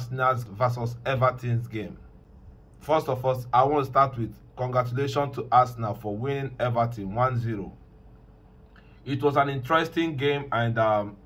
versus Everton's game. First of all, I want to start with congratulations to Arsenal for winning Everton 1-0. It was an interesting game, and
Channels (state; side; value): identical; both; correlation 1.00